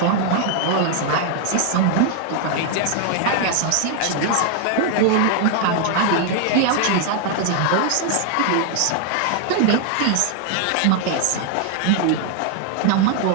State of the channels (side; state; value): both; different; correlation 0.00